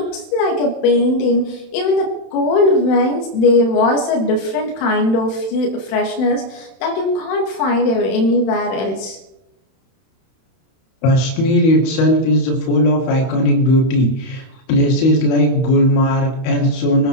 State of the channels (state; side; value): late; right; 31 ms